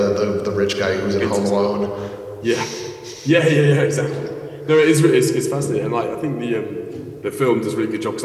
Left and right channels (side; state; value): both; identical; correlation 1.00